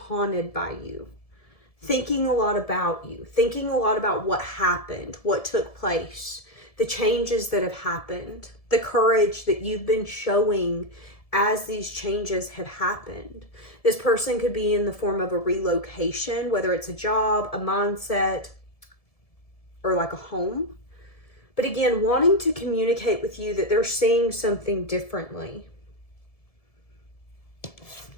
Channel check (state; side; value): late; right; 1.7 ms